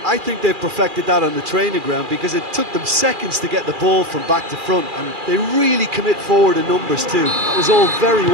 I think they've perfected that on the training ground because it took them seconds to get the ball from back to front, and they really commit forward in numbers too. That was all very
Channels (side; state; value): left; late; 2.4 ms